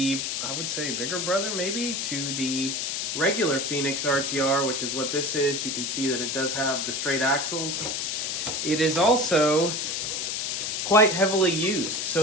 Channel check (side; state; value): left; noise; hiss, 1 dB below the sound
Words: I would say, bigger brother maybe to the regular Phoenix RTR, which is what this is. You can see that it does have the straight axles. It is also quite heavily used.